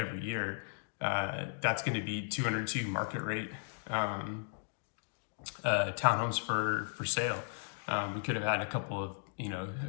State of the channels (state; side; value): silent; right; digital silence